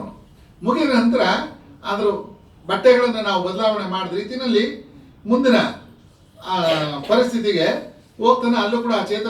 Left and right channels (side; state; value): both; identical; correlation 1.00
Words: ಮುಗಿದ ನಂತರ ಅದ್ರ ಬಟ್ಟೆಗಳನ್ನು ನಾವು ಬದಲಾವಣೆ ಮಾಡಿದ ರೀತಿಯಲ್ಲಿ ಮುಂದಿನ ಪರಿಸ್ಥಿತಿಗೆ ಹೋಗ್ತಾನೆ. ಅಲ್ಲೂ ಕೂಡ ಆ